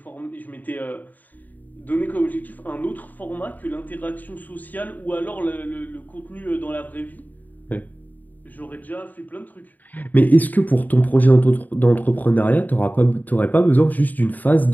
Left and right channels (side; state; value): right; late; 0.083 ms